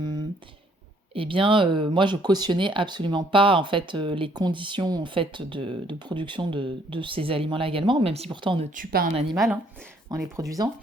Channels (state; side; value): normal; both; correlation 0.65